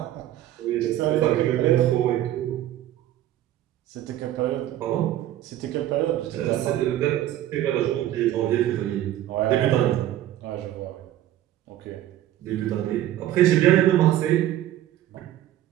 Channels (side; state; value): left; quieter; 13.0 dB